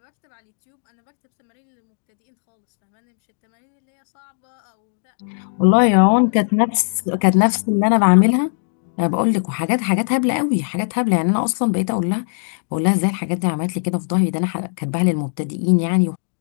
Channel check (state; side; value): silent; right; digital silence